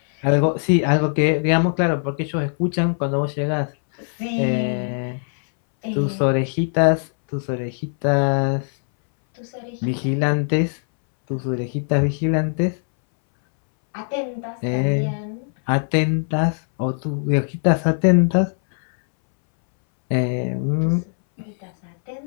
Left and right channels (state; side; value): silent; right; 63 dB below the other